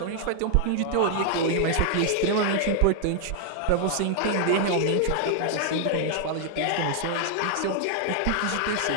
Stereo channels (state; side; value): different; both; correlation 0.00